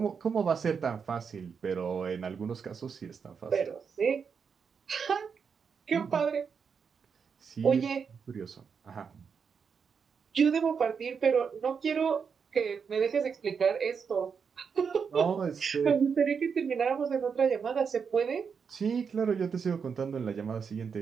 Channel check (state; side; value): quieter; left; 6.2 dB